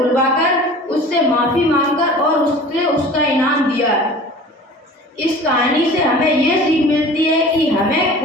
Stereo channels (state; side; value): normal; both; correlation 0.42